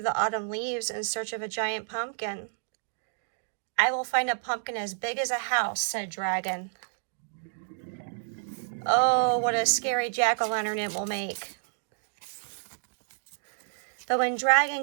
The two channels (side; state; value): left; silent; digital silence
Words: autumn leaves in search of a giant pumpkin. I will find a pumpkin as big as a house, said Dragon. Oh, what a scary jack-o'-lantern it will make. But when Dragon